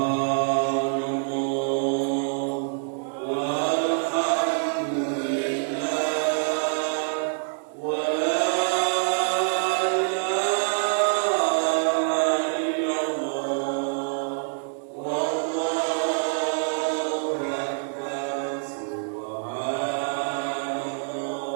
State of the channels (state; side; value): silent; left; digital silence